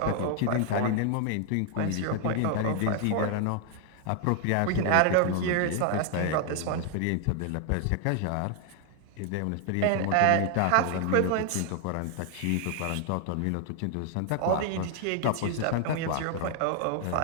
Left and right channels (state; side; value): different; both; correlation 0.00